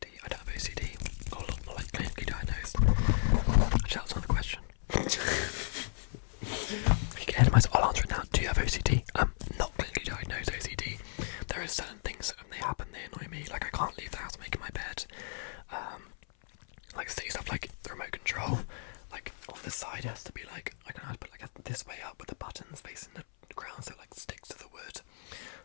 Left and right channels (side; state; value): right; silent; 55 dB below the other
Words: I don't have OCD, or not like clinically diagnosed. Actually, that's another question. You get ahead of myself, I'll answer it now. Do you have OCD? Not clinically diagnosed OCD. There are certain things that when they happen, they annoy me. Like I can't leave the house making my bed. Like silly stuff like the remote control. Like on the side it has to be like, I don't know how to put like this way up with the buttons facing the ground so it like sticks to the wood.